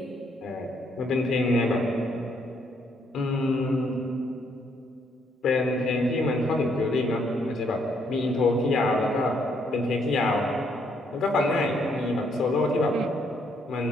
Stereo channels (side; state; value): both; normal; correlation 0.71